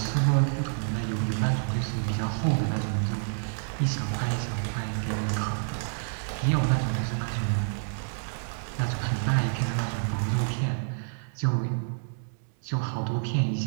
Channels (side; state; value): left; silent; 59 dB below the other